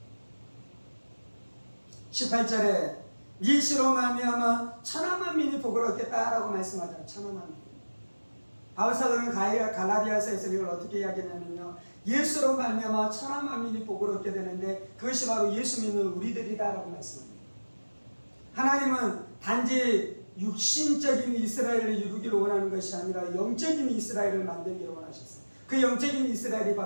18절에 네 씨로 말미암아 천하 만민이 복을 얻겠다라고 말씀하잖아요. 천하 만민. 바울사도는 갈라디아서에서 이걸 어떻게 이야기하냐면요, 예수로 말미암아 천하 만민이 복을 얻게 되는데 그것이 바로 예수 믿는 우리들이다라고 말씀합니다. 하나님은 단지 육신적인 이스라엘을 이루기를 원하는 것이 아니라 영적인 이스라엘을 만들기를 원하셨어요. 그 영적인 이스라엘이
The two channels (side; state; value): both; inverted; correlation -1.00